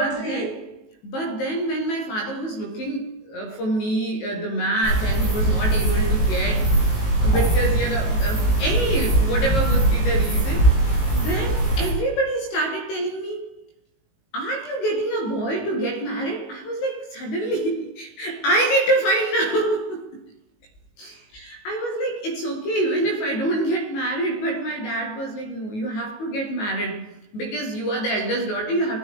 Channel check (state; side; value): late; right; 19 ms